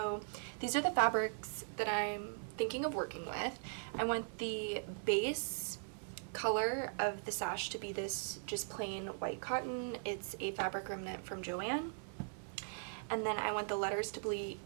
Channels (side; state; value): left; silent; 51 dB below the other